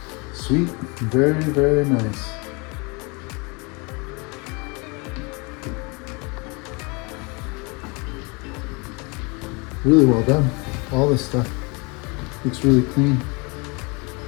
Sweet, very nice. Really well done. All this stuff looks really clean.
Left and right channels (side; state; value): right; quieter; 29.5 dB